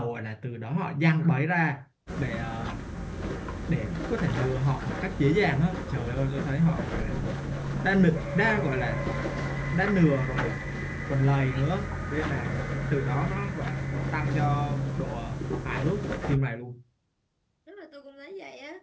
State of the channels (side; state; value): both; identical; correlation 1.00